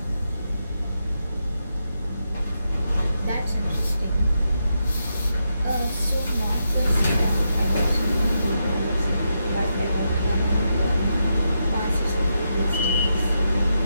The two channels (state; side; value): inverted; both; correlation -0.84